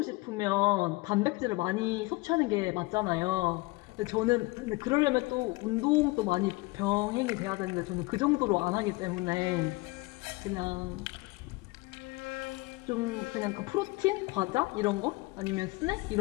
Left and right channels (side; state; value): right; quieter; 23.8 dB